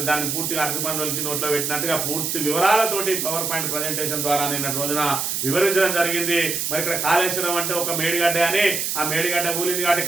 దాన్ని పూర్తిగా అరటిపండు వచ్చి నోట్లో పెట్టినట్టుగా పూర్తి వివరాలతోటి పవర్ పాయింట్ ప్రజెంటేషన్ ద్వారా నిన్నటి రోజున వివరించడం జరిగింది. మరి ఇక్కడ కాళేశ్వరం అంటే ఒక మేడిగడ్డ అని, ఆ మేడిగడ్డ కూలింది కాబట్టి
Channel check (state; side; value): noise; right; hiss, 1 dB below the sound